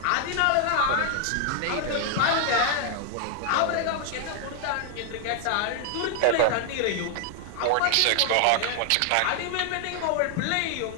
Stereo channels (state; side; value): different; both; correlation 0.00